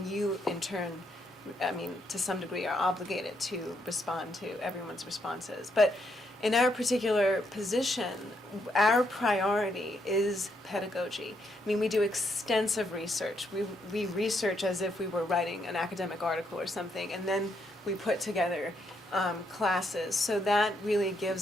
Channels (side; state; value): both; normal; correlation 0.76